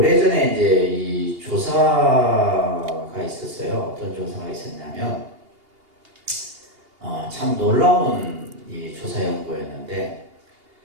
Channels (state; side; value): late; left; 2.8 ms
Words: 이제 이 조사가 있었어요. 어떤 조사가 있었냐면, 참 놀라운 이 조사 연구였는데,